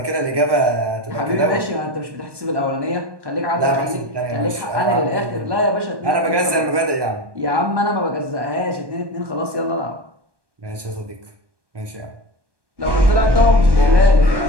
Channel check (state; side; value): late; left; 1.2 ms